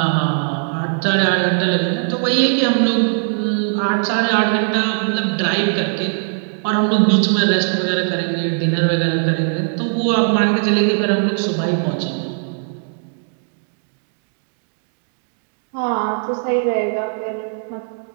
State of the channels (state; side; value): silent; left; 66 dB below the other